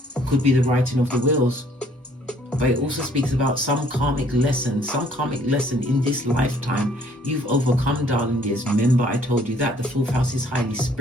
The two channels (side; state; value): both; normal; correlation 0.60